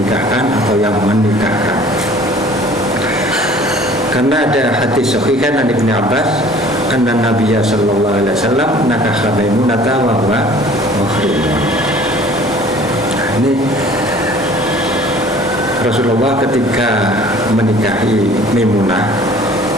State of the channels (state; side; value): normal; both; correlation 0.50